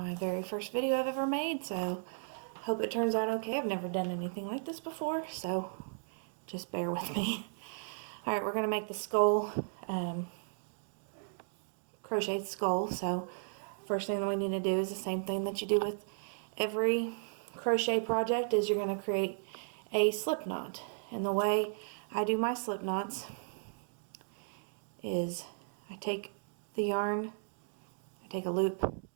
very first video I've ever made, so hope it turns out okay. I've never done anything like this before, so just bear with me. Alright, we're going to make the skull, crocheted skull. So first thing that we need to do is the same thing that you do with every crochet project, is you're going to create a slip knot. And the way I do my slip knots is I take the yarn, I take a loop,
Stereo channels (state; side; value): silent; left; digital silence